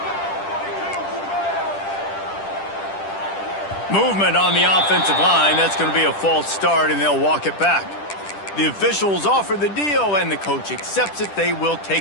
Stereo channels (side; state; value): right; late; 10 ms